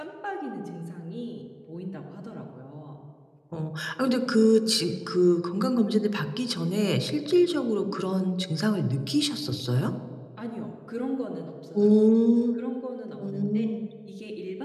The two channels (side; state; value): both; identical; correlation 1.00